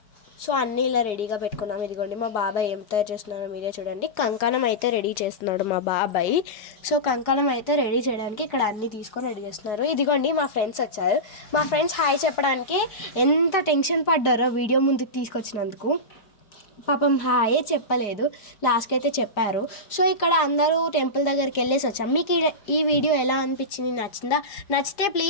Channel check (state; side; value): late; right; 4.8 ms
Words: సో అన్నీ ఇలా రెడీగా పెట్టుకున్నాం. ఇదిగోండి మా బాబాయ్ ఏం తయారు చేస్తున్నాడో మీరే చూడండి. కంకణం అయితే రెడీ చేస్తున్నాడు మా బాబాయ్. సో కంకణం అయితే రెడీ చేయడానికి ఇక్కడ అన్నీ తీసుకొని రెడీ చేస్తున్నారు. ఇదిగోండి మా ఫ్రెండ్స్ వచ్చారు, మా ఫ్రెండ్స్ హాయ్ చెప్పడానికి ఎంత టెన్షన్ పడ్డారో వీడియో ముందుకు తీసుకొచ్చినందుకు. పాపం హాయే చెప్పలేదు, లాస్ట్కి అయితే చెప్పారు. సో ఇక్కడ అందరూ టెంపుల్ దగ్గరికి వెళ్ళేసి వచ్చాం. మీకు ఈ వీడియో ఎలా అనిపించింది, నచ్చిందా? నచ్చితే